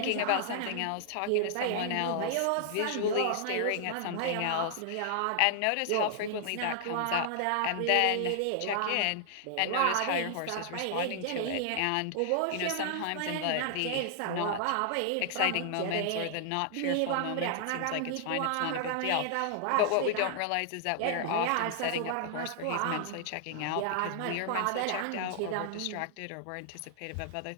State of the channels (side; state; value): both; different; correlation -0.01